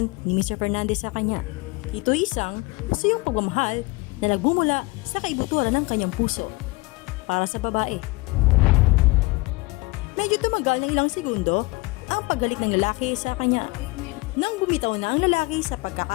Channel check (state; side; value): quieter; right; 24.0 dB